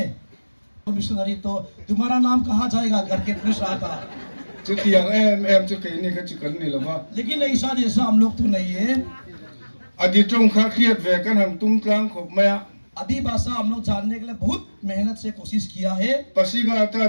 मिशनरी तो तुम्हारा नाम कहाँ जाएगा करके पूछ रहा था, लेकिन ऐसा जैसा हम लोग तो नहीं है। आदि भाषा हम लोग जानने के लिए बहुत मेहनत से कोशिश किया है। पसीघाट का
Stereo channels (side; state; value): both; inverted; correlation -1.00